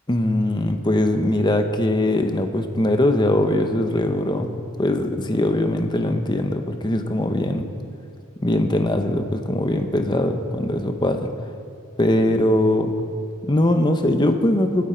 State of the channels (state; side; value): normal; both; correlation 0.76